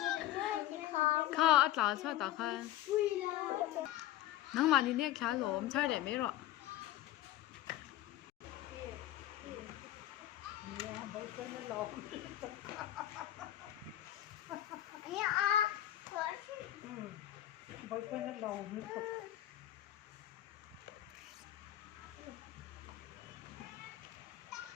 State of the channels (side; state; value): right; quieter; 13.6 dB